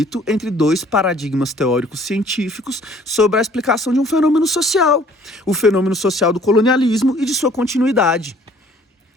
entre dois paradigmas teóricos científicos sobre a explicação de um fenômeno social. O fenômeno social do colonialismo e de sua continuidade,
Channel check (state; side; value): normal; both; correlation 0.56